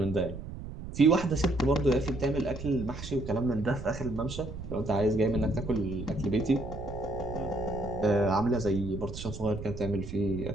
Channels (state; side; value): noise; right; rumble, 10 dB below the sound